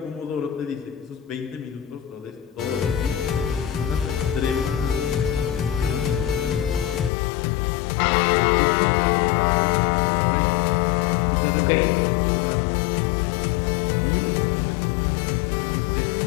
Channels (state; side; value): drops out; right; at 7.1 s